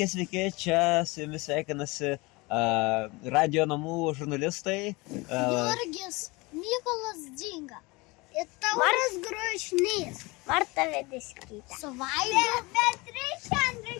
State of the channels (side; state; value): right; quieter; 24.4 dB